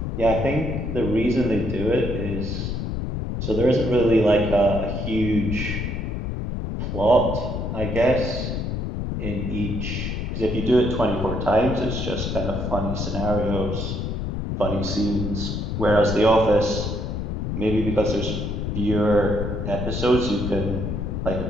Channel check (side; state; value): left; noise; rumble, 3 dB below the sound